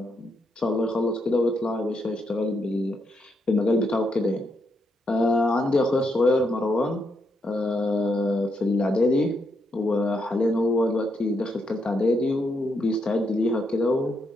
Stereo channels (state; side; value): normal; both; correlation 0.79